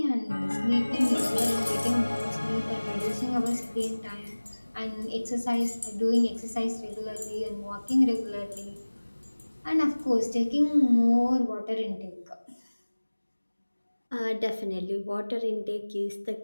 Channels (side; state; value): both; inverted; correlation -1.00